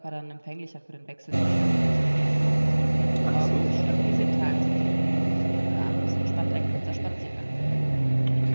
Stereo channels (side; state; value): both; inverted; correlation -1.00